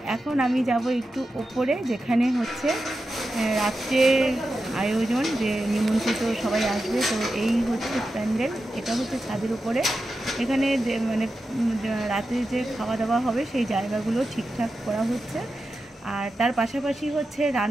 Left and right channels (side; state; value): both; normal; correlation 0.91